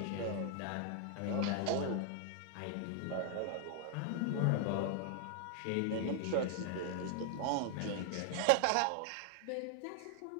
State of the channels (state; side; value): different; both; correlation 0.00